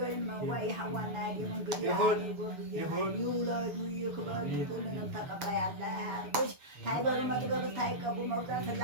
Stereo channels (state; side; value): late; left; 7.1 ms